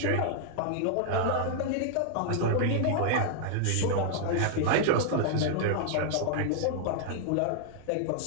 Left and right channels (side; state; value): both; different; correlation -0.01